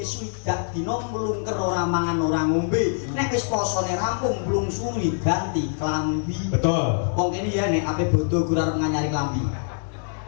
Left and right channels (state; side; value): silent; right; digital silence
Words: 20 dina mlungker ora mangan ora ngombe nek wis posone rampung blungsuli ganti klambi betul wong kene ya nek ape bodho kurang nganyari klambi